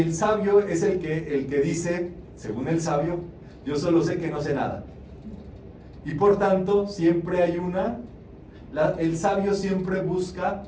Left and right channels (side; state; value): both; identical; correlation 1.00